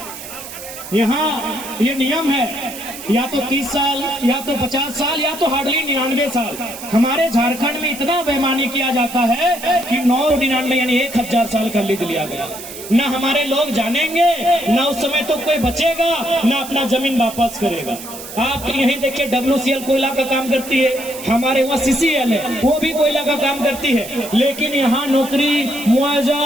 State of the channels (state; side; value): noise; right; hiss, 12 dB below the sound